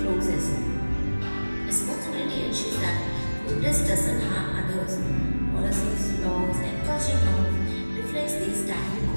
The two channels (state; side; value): inverted; both; correlation -1.00